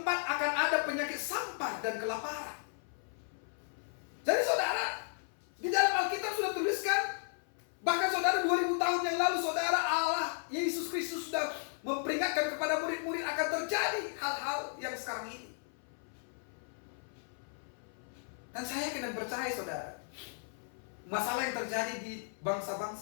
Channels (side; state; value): right; silent; 54 dB below the other